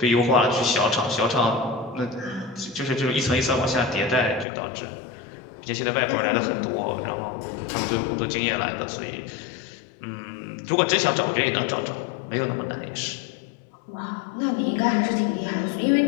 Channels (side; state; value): right; drops out; at 4.5 s